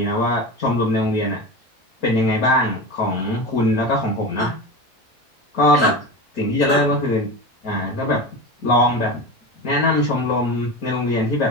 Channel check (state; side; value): normal; both; correlation 0.26